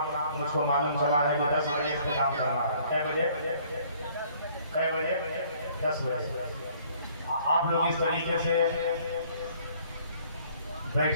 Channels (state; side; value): inverted; both; correlation -0.59